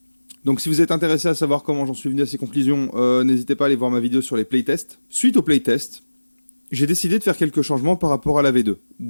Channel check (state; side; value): inverted; both; correlation -1.00